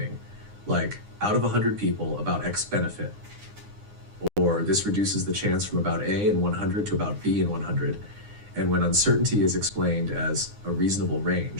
like out of 100 people, about X benefit, or this reduces the chance from about A in 100 to about B in 100, and when uncertainty is explained as a reasonable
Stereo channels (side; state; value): left; late; 9.7 ms